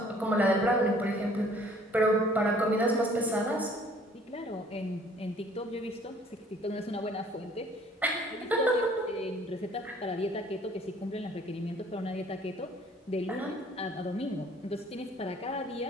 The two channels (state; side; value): normal; both; correlation 0.57